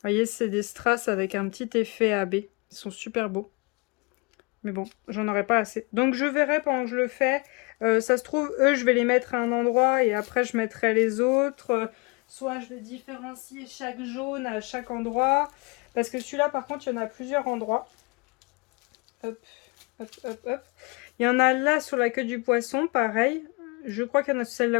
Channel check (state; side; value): quieter; right; 28.9 dB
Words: voyez, c'est des strass avec un petit effet AB. Ils sont super beaux. Mais bon, j'en aurais pas assez. Donc je verrai pendant que je le fais. Ça se trouve, eux, je vais les mettre à un endroit et après je mettrai les autres. Soit je vais différencier chaque jaune à chaque endroit. Parce que celui-là, par contre, il y en a plusieurs endroits. Hop, hop, hop, hop. Il y en a là sur la queue du poisson, pareil. Je crois qu'il y en a